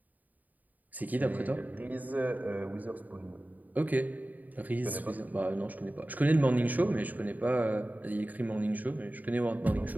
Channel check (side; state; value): left; late; 0.080 ms